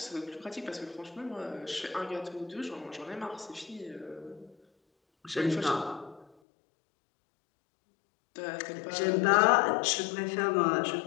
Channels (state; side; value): drops out; right; at 6.2 s